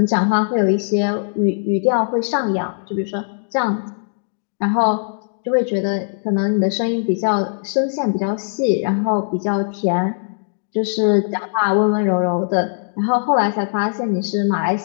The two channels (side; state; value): right; silent; digital silence